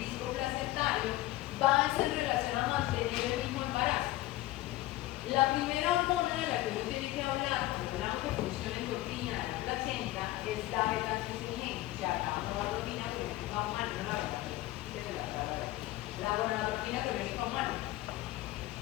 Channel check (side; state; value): right; quieter; 17.0 dB